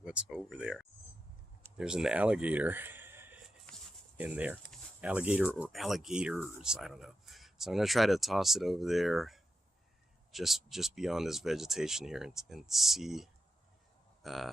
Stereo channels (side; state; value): both; normal; correlation 0.88